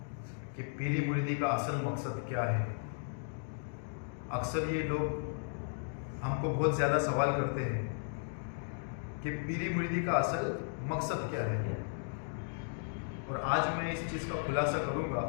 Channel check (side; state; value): right; silent; digital silence